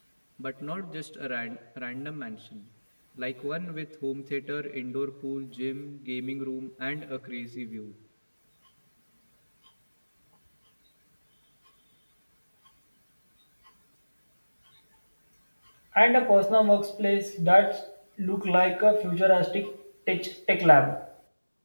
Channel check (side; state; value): both; inverted; correlation -1.00